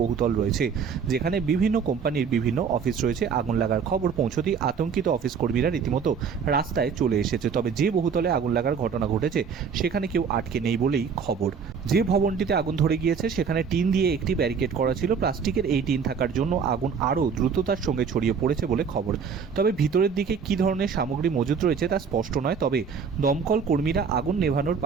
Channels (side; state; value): left; quieter; 6.2 dB